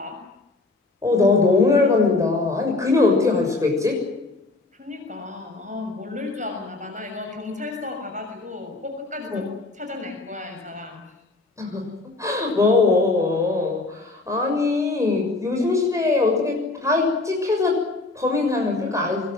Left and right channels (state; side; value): quieter; right; 3.2 dB